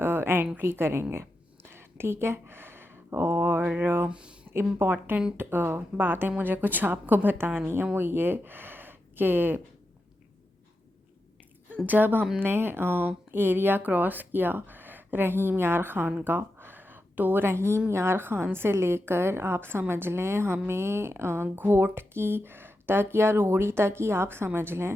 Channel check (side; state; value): both; normal; correlation 0.89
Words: करेंगे। ठीक है। और इम्पॉर्टेंट बातें मुझे कुछ आपको बतानी है, वो ये कि जब हमने एरिया क्रॉस किया रहीम यार ख़ान का, तो रहीम यार ख़ान से लेकर आप समझ लें हमें घोट की तक या रोहड़ी तक ही आप समझ